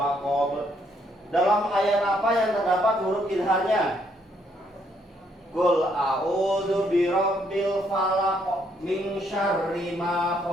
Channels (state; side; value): normal; both; correlation 0.71